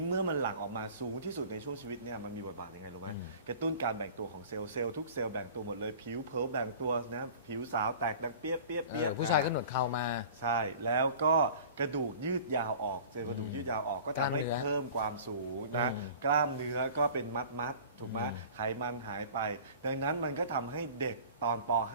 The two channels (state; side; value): inverted; both; correlation -0.43